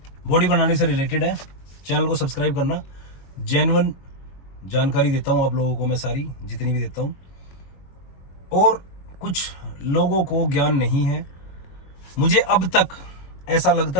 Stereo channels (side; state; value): right; late; 22 ms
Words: बॉडी बनाने से रिलेटेड है। चैनल को सब्सक्राइब करना। जेन्युइन जानकारी देता हूँ आप लोगों को, मैं सारी जितनी भी देता हूँ। और कुछ लोगों को ज्ञान नहीं है। मुझे अब तक ऐसा